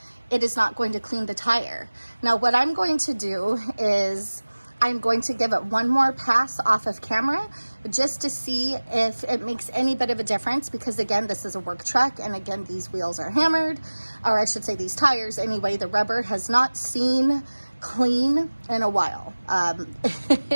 it is not going to clean the tire. Now, what I'm going to do is I'm going to give it one more pass off of camera just to see if it makes any bit of a difference, because again, this is a work truck, and again, these wheels are hammered, or I should say these tires. Anyway, the rubber has not seen clean in a while.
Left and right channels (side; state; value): both; inverted; correlation -1.00